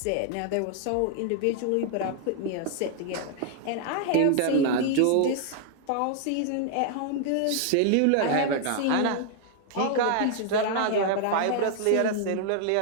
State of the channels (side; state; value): both; different; correlation 0.00